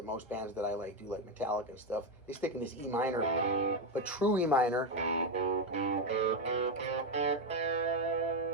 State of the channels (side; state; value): both; normal; correlation 0.08